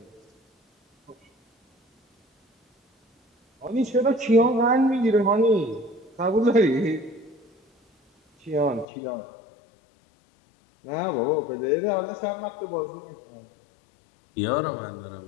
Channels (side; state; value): right; drops out; at 8.8 s